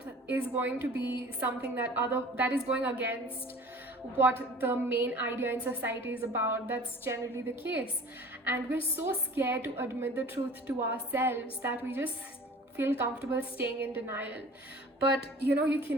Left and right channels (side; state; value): both; normal; correlation 0.44